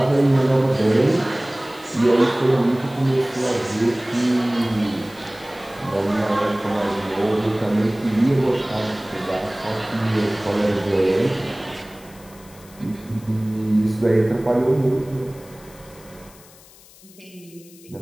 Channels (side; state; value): left; noise; hiss, 24 dB below the sound